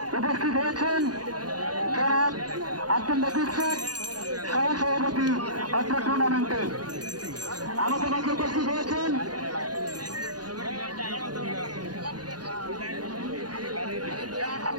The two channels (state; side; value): late; left; 0.69 ms